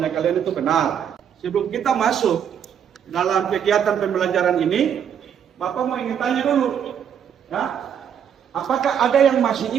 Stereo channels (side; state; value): left; quieter; 8.5 dB